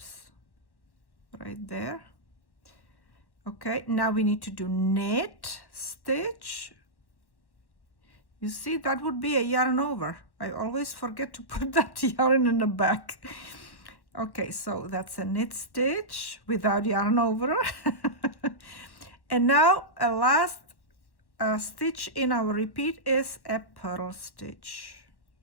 right there. Okay, now we need to do knit stitch. You see, that would be a yarn over. I always forget to put that yarn in the back. Okay, so that's a knit stitch without yarn over. And now a last stitch in our repeat is a purl stitch.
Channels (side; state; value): right; late; 1.1 ms